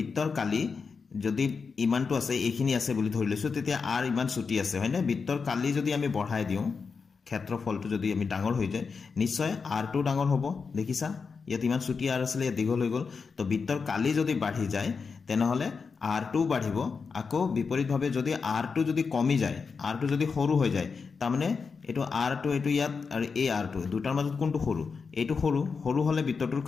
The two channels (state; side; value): quieter; right; 5.2 dB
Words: কালি যদি ইমানটো আছে এইখিনি আছে বুলি ধৰি লৈছো তেতিয়া r ইমান ছুটি আছে হয়নে বৃত্তৰ কালি যদি আমি বঢ়াই দিও ক্ষেত্ৰফলটো যদি আমি ডাঙৰ হৈ যায় নিশ্চয় r টো ডাঙৰ হ'ব দেখিছা ইয়াত ইমান ছুটি r আছিল ইয়াত দীঘল হৈ গল তো বৃত্তৰ কালি যদি বাঢ়ি যায় তেনেহলে r টো বাঢ়িব আকৌ বিপৰীতভাৱে যদি r টো যদি কমি যায় r টো যদি সৰু হৈ যায় তাৰমানে এটো r টো এটো ইয়াত আৰু এই r টো দুটাৰ মাজত কোনটো সৰু এটো সৰু হলে বৃত্তটোৰ